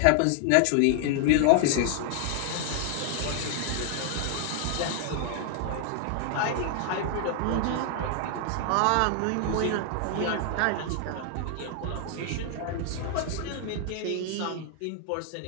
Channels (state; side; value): different; both; correlation 0.00